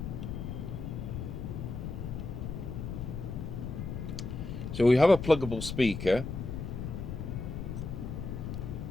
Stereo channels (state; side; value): noise; left; rumble, 5 dB below the sound